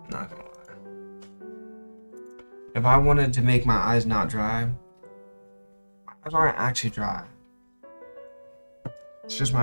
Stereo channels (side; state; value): both; inverted; correlation -1.00